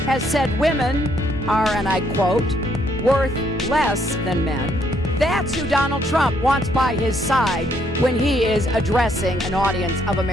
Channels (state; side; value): normal; both; correlation 0.70